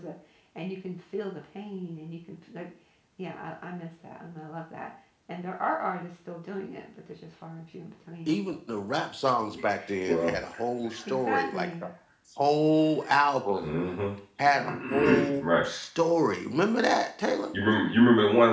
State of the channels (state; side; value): identical; both; correlation 1.00